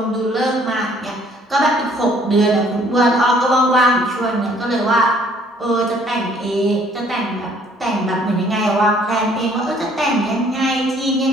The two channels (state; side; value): normal; both; correlation 0.60